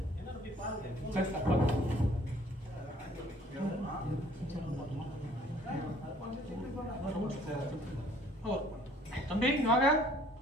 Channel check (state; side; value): normal; both; correlation 0.58